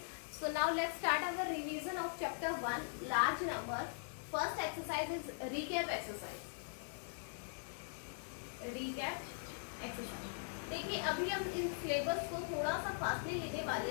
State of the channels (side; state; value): right; silent; digital silence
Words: So now let's start our revision of chapter 1, large number. First exercise is recap exercise. Recap exercise. देखिए अभी हम in syllabus को थोड़ा सा fastly लेने वाले